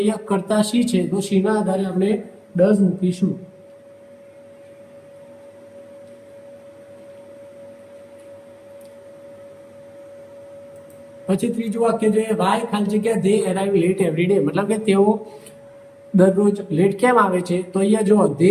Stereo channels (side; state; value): both; identical; correlation 1.00